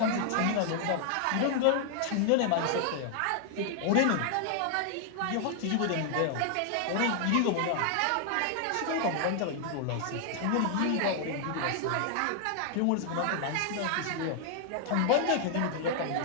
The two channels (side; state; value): both; different; correlation 0.00